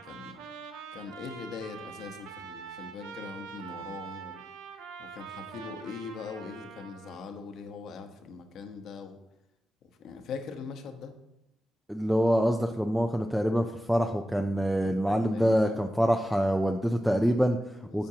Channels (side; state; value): both; normal; correlation 0.92